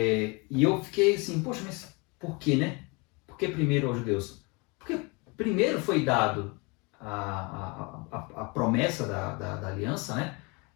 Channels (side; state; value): right; quieter; 28.8 dB